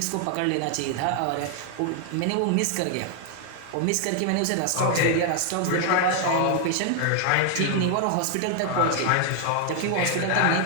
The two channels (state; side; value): different; both; correlation 0.00